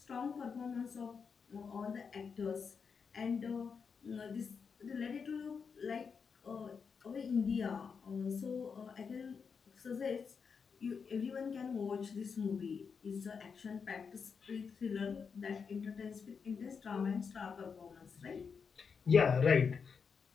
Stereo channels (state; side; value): quieter; right; 5.9 dB